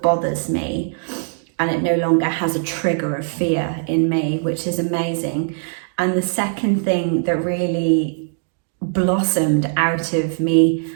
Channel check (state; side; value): silent; left; digital silence